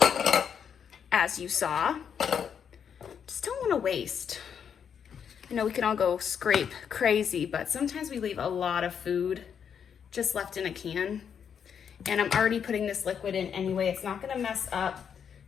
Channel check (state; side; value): quieter; right; 7.6 dB